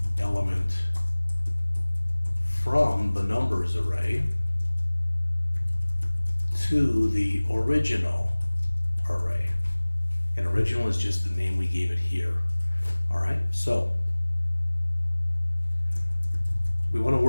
element from the numbers array to the original array. And original is just the name we gave it here. All right, so we want to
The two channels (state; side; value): inverted; both; correlation -1.00